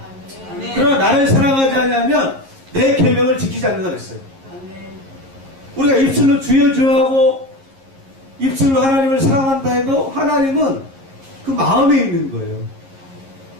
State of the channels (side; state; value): left; late; 11 ms